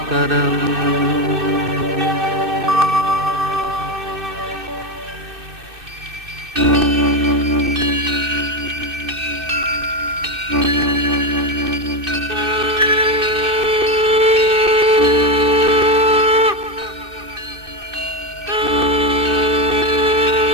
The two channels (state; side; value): late; left; 2.6 ms